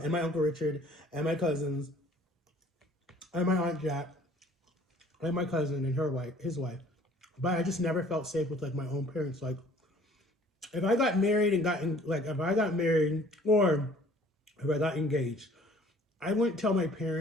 and my Uncle Richard and my cousins and my Aunt Jack and my cousin and his wife. But I just never felt safe with like my own parents. Like if I got married or if I got engaged, I wouldn't tell my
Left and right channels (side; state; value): both; normal; correlation 0.54